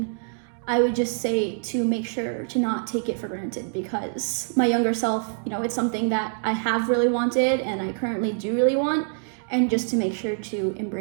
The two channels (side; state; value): left; silent; digital silence